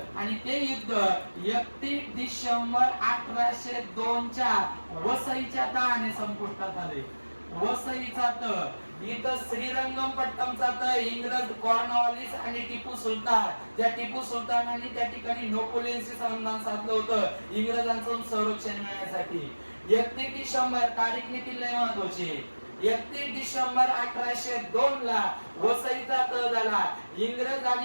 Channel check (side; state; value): both; inverted; correlation -1.00